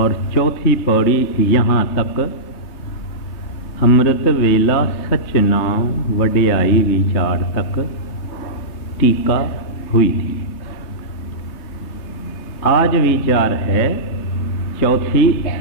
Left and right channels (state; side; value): late; right; 3.3 ms